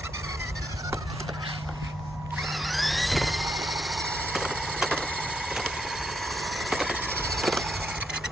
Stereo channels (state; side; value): normal; both; correlation 0.78